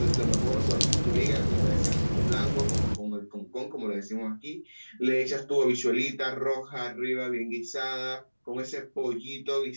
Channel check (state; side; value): inverted; both; correlation -1.00